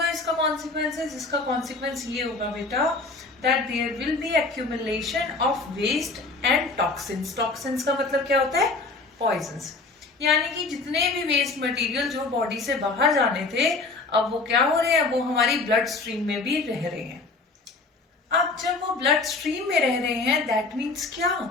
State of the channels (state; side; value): quieter; right; 3.7 dB